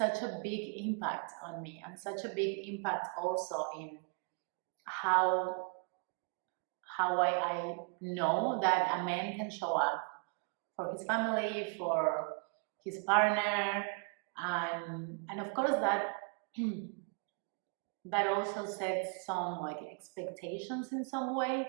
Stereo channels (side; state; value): left; quieter; 38.5 dB